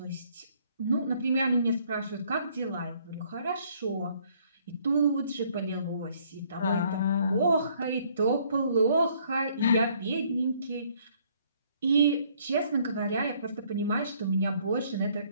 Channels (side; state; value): both; inverted; correlation -0.64